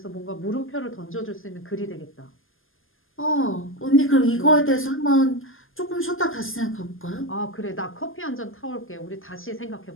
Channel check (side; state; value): right; late; 0.59 ms